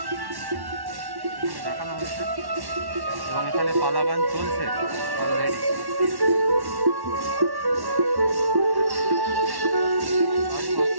দেখানো হয়েছে এবং এখানে পালা গান চলছে অলরেডি।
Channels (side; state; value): left; late; 1.1 ms